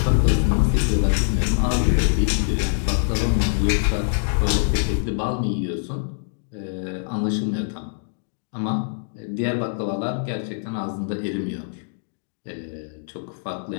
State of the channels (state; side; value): silent; right; digital silence